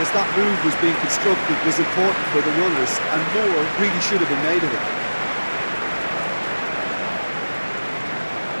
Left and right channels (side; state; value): both; inverted; correlation -1.00